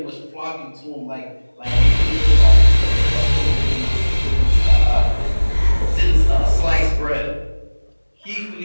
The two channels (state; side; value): inverted; both; correlation -1.00